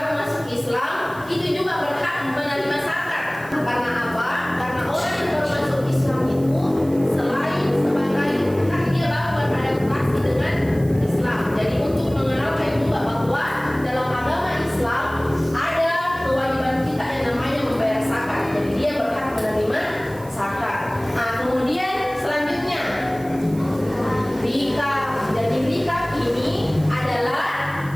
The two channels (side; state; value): right; noise; hiss, 22 dB below the sound